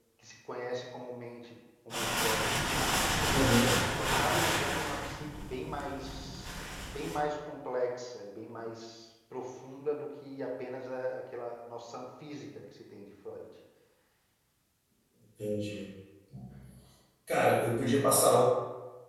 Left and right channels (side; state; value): both; identical; correlation 1.00